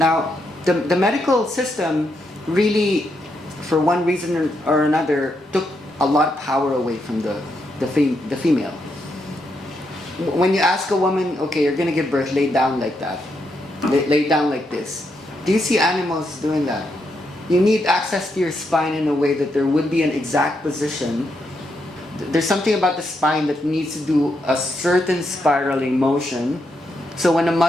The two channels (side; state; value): both; normal; correlation 0.80